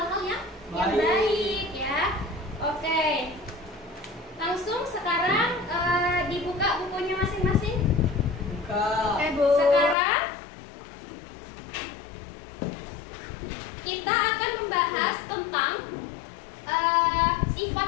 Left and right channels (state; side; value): drops out; right; at 10.0 s